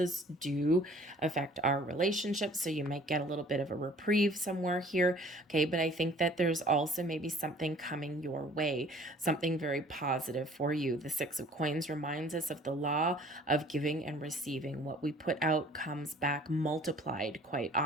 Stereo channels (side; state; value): both; normal; correlation 0.52